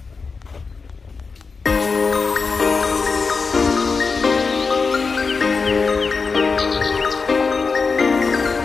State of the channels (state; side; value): quieter; right; 4.7 dB